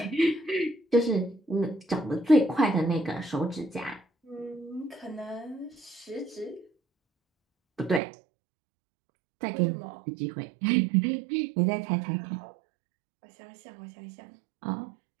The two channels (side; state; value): left; drops out; at 8.0 s